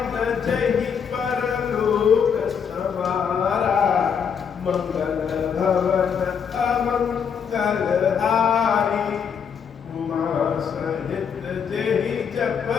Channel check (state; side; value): quieter; right; 7.1 dB